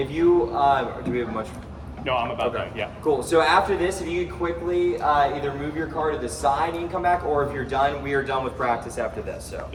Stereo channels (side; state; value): both; identical; correlation 1.00